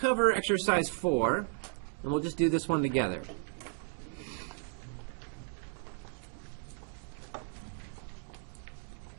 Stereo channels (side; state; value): left; silent; 55 dB below the other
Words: exercise 4, and we'll just do this one together.